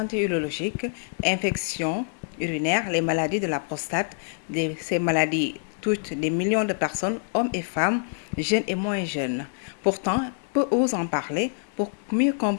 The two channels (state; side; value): silent; right; digital silence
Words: urologique, infections urinaires, les maladies de la prostate. Ces maladies touchent des millions de personnes, hommes et femmes, jeunes et moins jeunes. Pourtant, peu osent en parler. Pour mieux